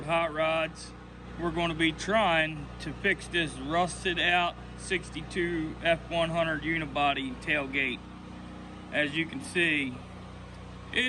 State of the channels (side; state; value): both; identical; correlation 1.00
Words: Hot Rods, we're going to be trying to fix this rusted out 62 F100 unibody tailgate. As you can see,